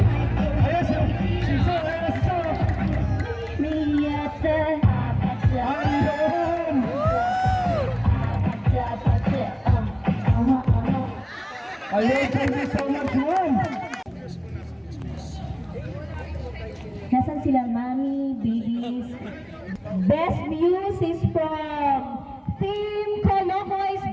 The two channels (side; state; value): both; identical; correlation 1.00